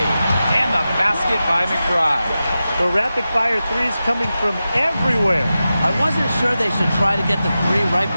And the basket by McBride. The rapid-fire threes coming from everywhere. I wasn't sure they should try to get the three right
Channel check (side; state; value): both; inverted; correlation -0.93